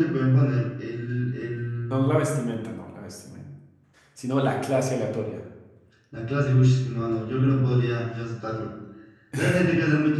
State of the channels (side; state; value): both; identical; correlation 1.00